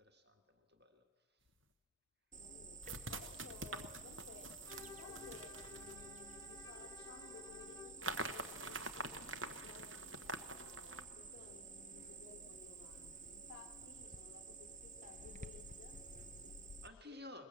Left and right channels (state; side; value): normal; both; correlation 0.07